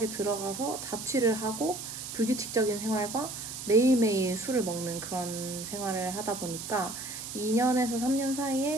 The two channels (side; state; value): right; noise; hiss, 8 dB below the sound